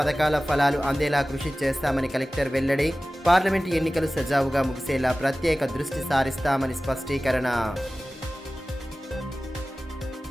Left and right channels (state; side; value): normal; both; correlation 0.97